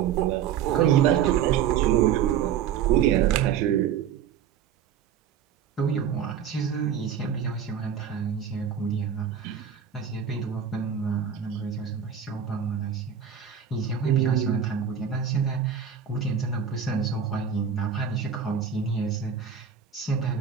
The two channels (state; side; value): quieter; left; 8.2 dB